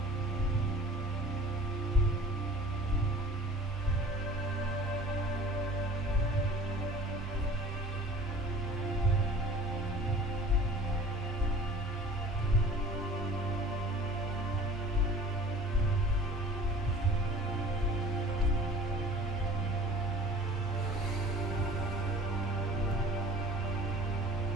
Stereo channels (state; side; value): normal; both; correlation 0.45